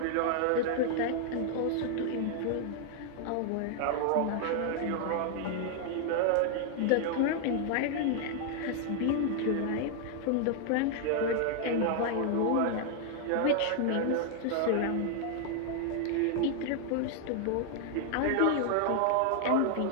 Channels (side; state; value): both; different; correlation 0.00